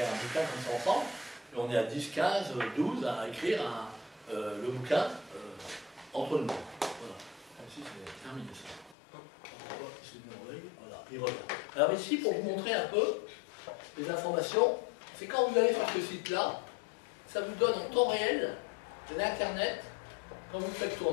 un bouquin comme ça ensemble. Et on est à 10, 15, 12 à écrire le bouquin entre nous. Voilà. Ici, c'est terminé ça. Voilà, il revient. Alors ici, pour vous montrer un peu les informations, c'est quand vous allez sur ce site-là, ça vous donne en temps réel l'Internet, quand vous le faites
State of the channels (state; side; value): drops out; right; at 9.0 s